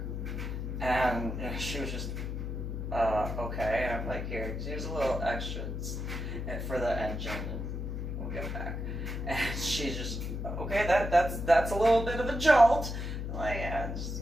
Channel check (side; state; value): left; noise; hum, 4 dB below the sound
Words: And you know, she was just, okay. And I'm like, here's a little extra for the engine, and we'll get back. And she's just, okay, that's a little bit of a jolt. I'm like, yeah,